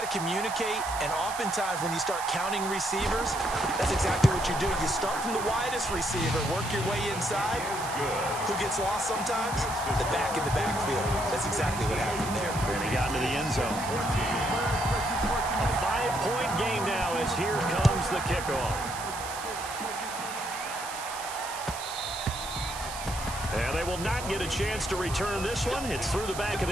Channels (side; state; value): right; noise; hiss, 9 dB below the sound